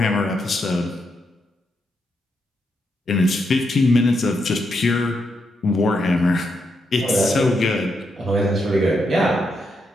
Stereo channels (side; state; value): both; normal; correlation 0.81